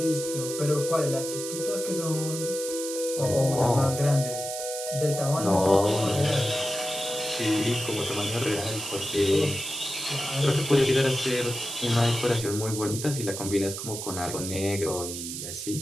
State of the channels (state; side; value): noise; right; hiss, 7 dB below the sound